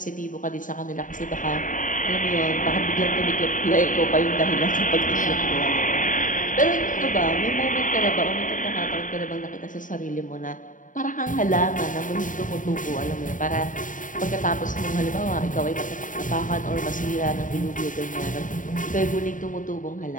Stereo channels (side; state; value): right; late; 0.38 ms